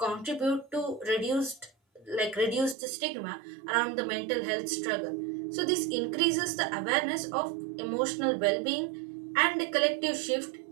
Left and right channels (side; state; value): left; drops out; at 2.8 s